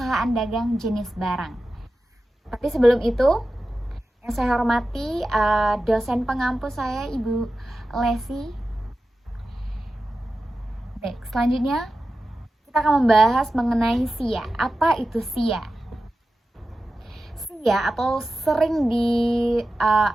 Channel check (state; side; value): normal; both; correlation 0.93